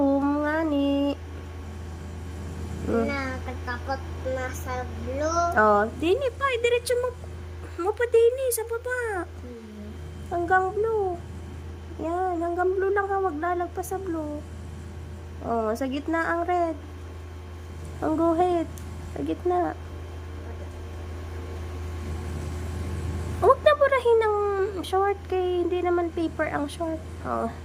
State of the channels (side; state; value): both; identical; correlation 1.00